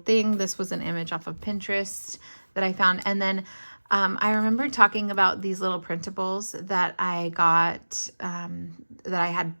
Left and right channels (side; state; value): both; inverted; correlation -1.00